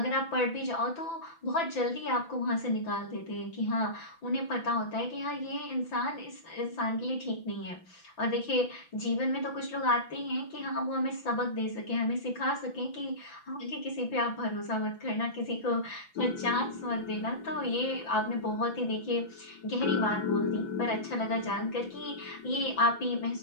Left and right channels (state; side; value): late; right; 5.9 ms